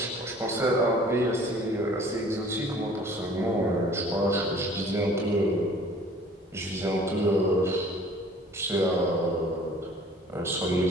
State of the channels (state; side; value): normal; both; correlation 0.51